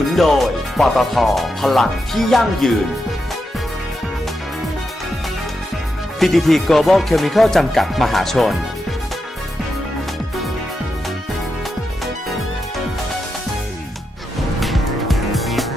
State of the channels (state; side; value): normal; both; correlation 0.86